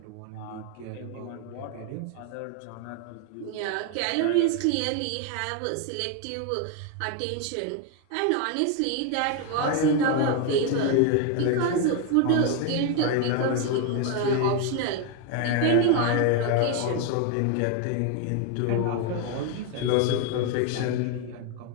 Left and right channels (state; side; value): different; both; correlation 0.01